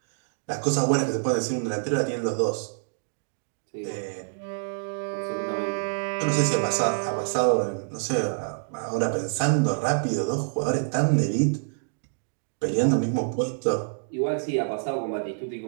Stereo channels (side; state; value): left; silent; digital silence